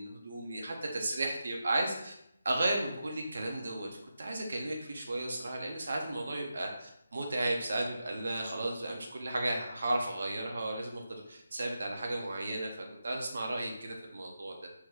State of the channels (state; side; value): inverted; both; correlation -0.89